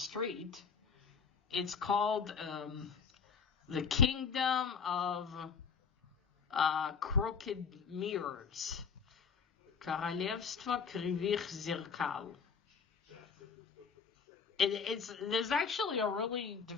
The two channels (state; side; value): quieter; right; 6.0 dB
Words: It's called The Kingdom of Crooked Mirrors. Королевство Кривых Зеркал. There's actually a really